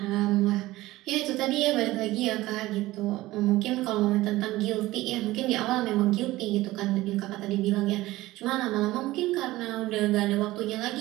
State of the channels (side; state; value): left; quieter; 17.7 dB